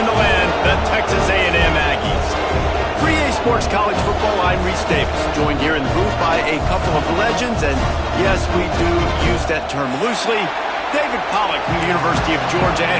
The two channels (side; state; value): both; identical; correlation 1.00